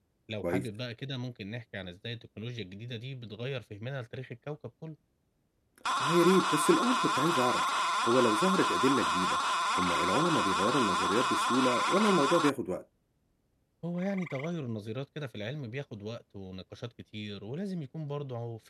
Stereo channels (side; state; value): both; identical; correlation 1.00